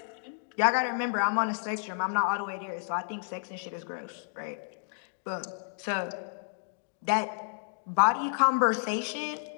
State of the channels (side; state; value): right; silent; digital silence